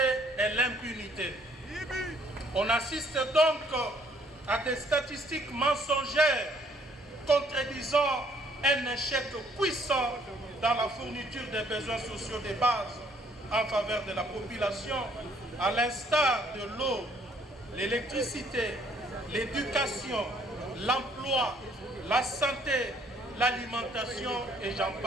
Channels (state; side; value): normal; both; correlation 0.64